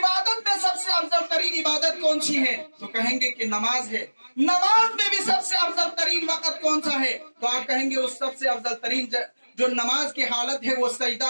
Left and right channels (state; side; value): inverted; both; correlation -1.00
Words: میں سب سے افضل ترین عبادت کون سی ہے تو کہیں گے کہ نماز ہے، نماز میں بھی سب سے افضل ترین وقت کون سا ہے تو آپ کہیں گے اس سب سے افضل ترین جو نماز کی حالت ہے وہ